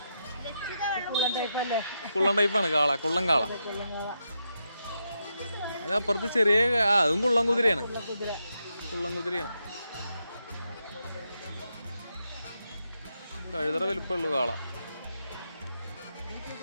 കുള്ളൻ ടൈപ്പാണ്. കാള, കുള്ളൻ കാള. അപ്പുറത്ത് ചെറിയ അതും കുള്ളൻ കുതിരയാണ്. കുള്ളൻ കുതിരയാണ്. കഴുതറ വലിപ്പമുള്ളൂ കാള.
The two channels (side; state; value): both; inverted; correlation -0.84